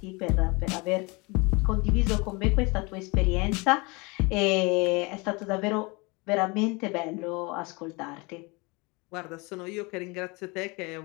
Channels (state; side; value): quieter; right; 27.1 dB